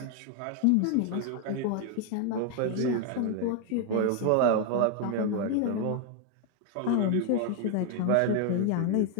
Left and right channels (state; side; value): different; both; correlation 0.01